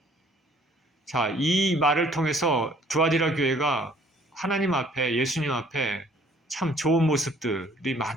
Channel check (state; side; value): normal; both; correlation 0.58